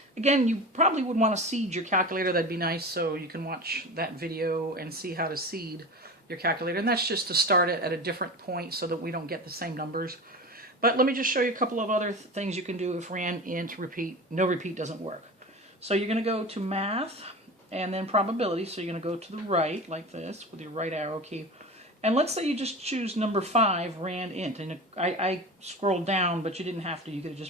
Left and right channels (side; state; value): both; normal; correlation 0.30